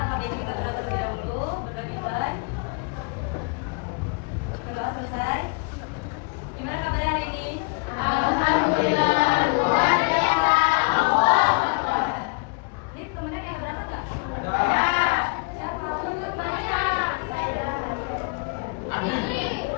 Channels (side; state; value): right; quieter; 31.8 dB